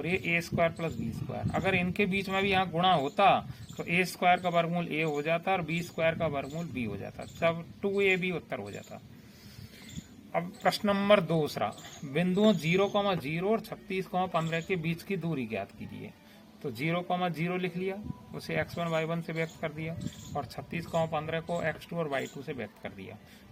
ये a square plus b square. अगर इनके बीच में भी यहाँ गुणा होता तो a स्क्वायर का वर्गमूल a हो जाता और b स्क्वायर का वर्गमूल b हो जाता, तब 2ab उत्तर हो जाता। अब प्रश्न नंबर दूसरा, बिंदुओं 0,0 और 36,15 के बीच की दूरी ज्ञात कीजिए। तो 0,0 लिख लिया, उसे x1 y1 से व्यक्त कर दिया, और 36,15 को x2 और y2 से व्यक्त कर दिया।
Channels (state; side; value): identical; both; correlation 1.00